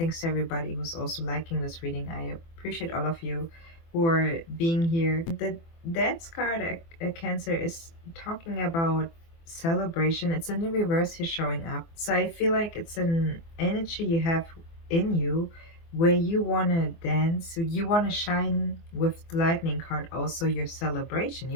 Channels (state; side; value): late; right; 24 ms